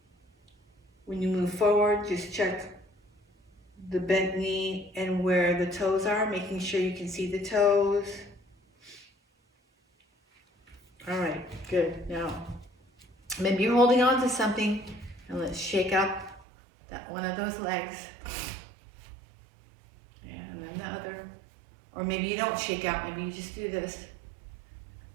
When you move forward, just check the bent knee and where the toes are, making sure you can see the toes. All right, good. Now, maybe you're holding on to something, and let's shake out that one of those legs. Yeah, and then the other. Or maybe you don't shake out, maybe you just do this.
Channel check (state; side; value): drops out; left; at 16.4 s